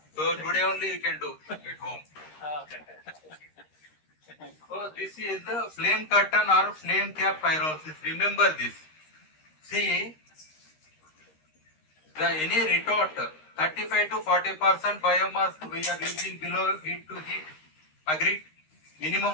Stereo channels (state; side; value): late; right; 13 ms